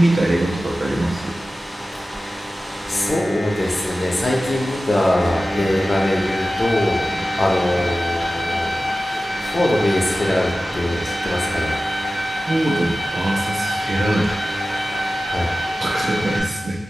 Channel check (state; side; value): normal; both; correlation 0.95